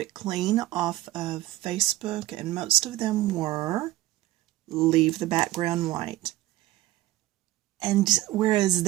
Clean off of Facebook, and most of them were leave the background white. And whereas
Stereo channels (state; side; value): quieter; left; 16.4 dB